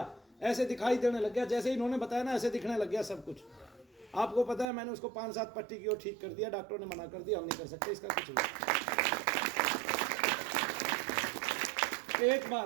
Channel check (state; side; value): drops out; left; at 4.7 s